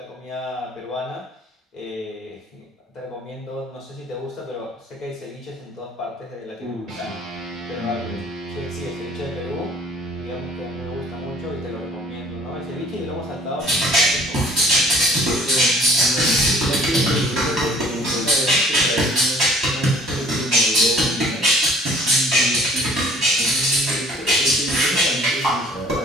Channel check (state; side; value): normal; both; correlation 0.53